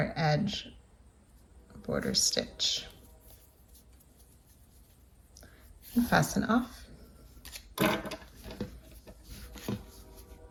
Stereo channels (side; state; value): both; identical; correlation 1.00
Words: edge border stitch. And fasten off.